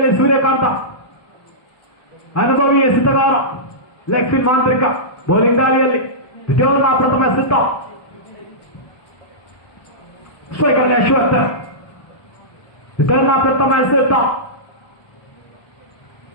ಸೂರ್ಯಕಾಂತ ಅನುಭವಿ ಎಸೆತಗಾರ, ಲೆಗ್ ಸ್ಪಿನ್ ಮಾಂತ್ರಿಕ. ಬೌಲಿಂಗ್ ದಾಳಿಯಲ್ಲಿ ದ್ವಿತೀಯ ಪ್ರಥಮ ಎಸೆತ. ಸ್ಟ್ರೈಕರ್ ಅಶ್ವಥ್ ವಿತರಣ ಪ್ರಥಮ ಎಸೆತ.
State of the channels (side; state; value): right; late; 1.2 ms